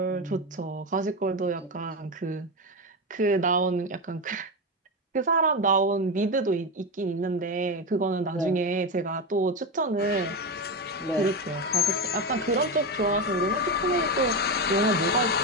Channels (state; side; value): normal; both; correlation 0.15